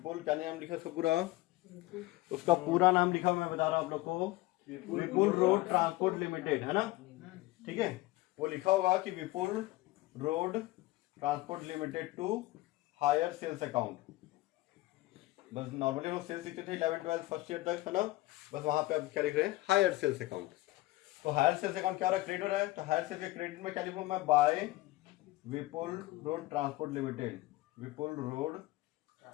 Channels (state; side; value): quieter; right; 18.9 dB